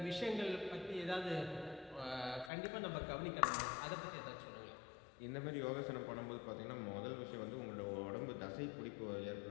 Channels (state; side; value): drops out; right; at 2.5 s